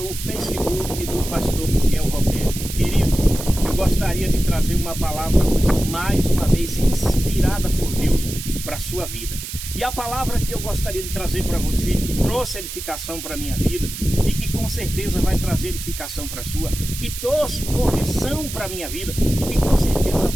Facebook do pastor Miguel Roberto. Queridos, eu gostaria de trazer uma palavra hoje, mais uma vez, inspirada por Deus para a sua vida. E a palavra que eu gostaria de trazer para você, que trouxe edificação para a minha vida e que com certeza vai trazer edificação para a sua, que trouxe correção para a minha vida e que com certeza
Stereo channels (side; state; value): right; noise; hiss, 9 dB below the sound